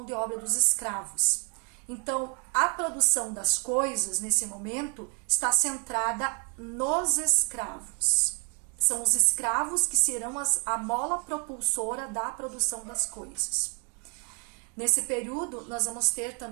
de obra dos escravos. Então, a produção das coisas, nesse momento, está centrada nos escravos. São os escravos que serão a mola propulsora da produção das coisas. Nesse período, nós vamos ter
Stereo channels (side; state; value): left; quieter; 37.5 dB